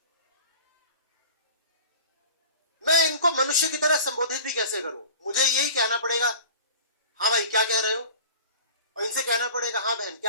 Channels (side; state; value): both; inverted; correlation -0.41